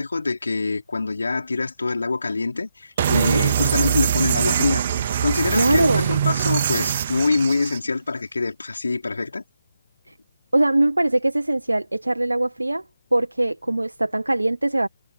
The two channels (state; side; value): inverted; both; correlation -0.86